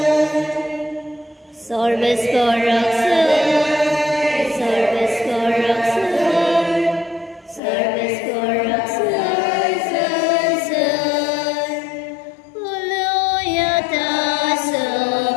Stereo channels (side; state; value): right; drops out; at 7.6 s